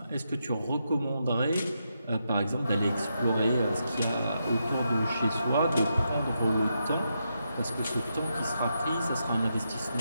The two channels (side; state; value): both; inverted; correlation -0.83